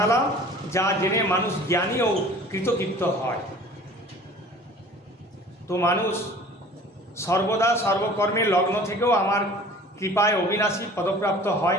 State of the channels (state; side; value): normal; both; correlation 0.46